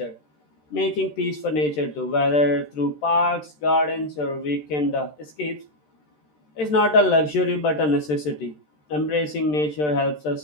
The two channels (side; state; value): right; late; 13 ms